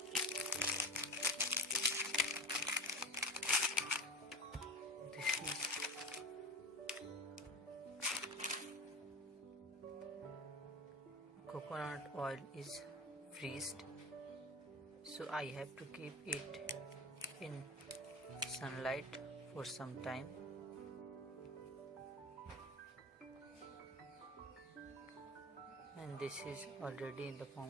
This is coconut oil is freezed, so I have to keep it in sunlight for some time. And this is already in the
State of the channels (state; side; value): normal; both; correlation 0.30